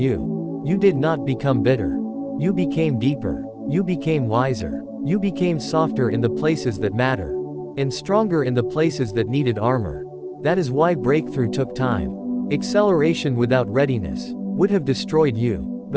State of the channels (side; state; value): both; identical; correlation 1.00